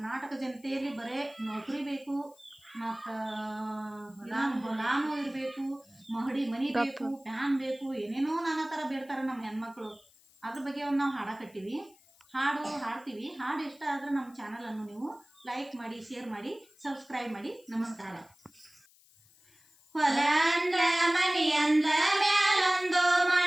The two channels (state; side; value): noise; left; hiss, 28 dB below the sound